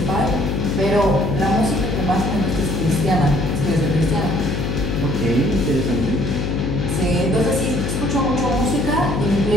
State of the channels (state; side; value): noise; left; hum, 1 dB below the sound